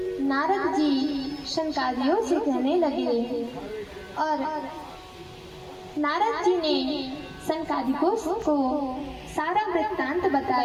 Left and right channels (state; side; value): identical; both; correlation 1.00